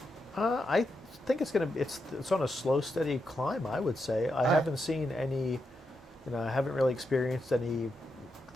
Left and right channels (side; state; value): both; normal; correlation 0.84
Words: I think it's on a slow, steady climb, I would say. I haven't seen any, I haven't really experienced anything